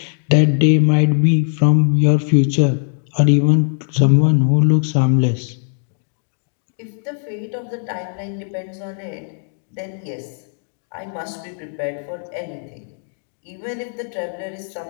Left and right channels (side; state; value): right; silent; digital silence